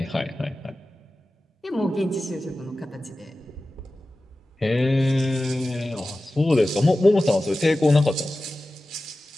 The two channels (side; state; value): both; normal; correlation 0.95